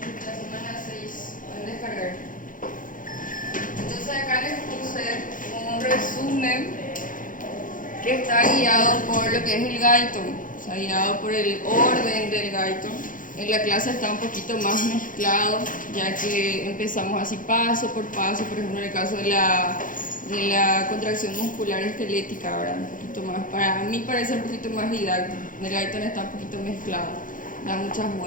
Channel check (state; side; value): late; right; 0.39 ms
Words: La semana 6 pueden descargar. Entonces acá les puse un resumen que está guiado por lo que es el Guyton, o sea, guiado por el orden del Guyton. En la clase está un poquito más mezclado, ya que empezamos así paso por paso, por ejemplo en el caso de la contracción muscular esquelética, ahora un poquito más, para mí parece un poquito más didáctico. En el Guyton está un poquito mezclado, da muchas